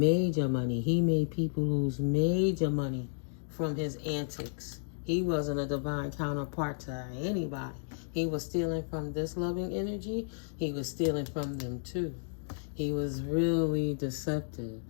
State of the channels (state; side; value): silent; right; digital silence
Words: money. He made people lose major money from his antics. He wasn't a divine counterpart to anybody. He was stealing from this loving energy. He was stealing from them too. He was really deceptive,